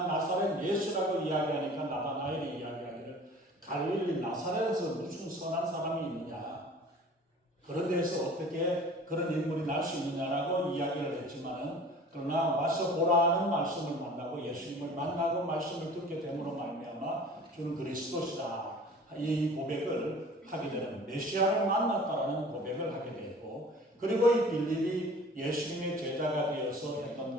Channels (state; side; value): normal; both; correlation 0.45